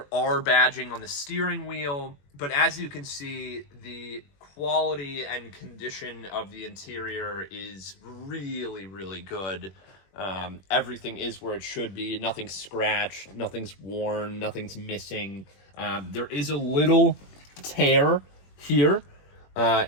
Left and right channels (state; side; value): late; right; 21 ms